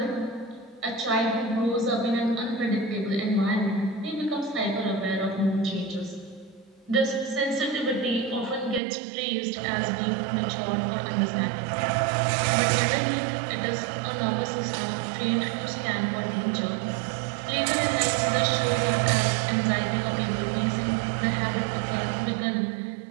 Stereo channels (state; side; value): drops out; left; at 8.8 s